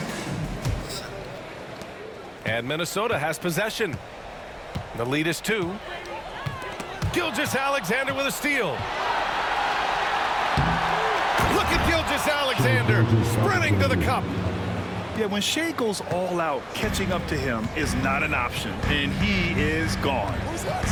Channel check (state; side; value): identical; both; correlation 1.00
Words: And Minnesota has possession. The lead is 2. Gilgeous-Alexander with a steal. Look at Gilgeous-Alexander sprinting to the cup. Yeah, when Shea goes all out, catching up to him is not an option, and he is gone.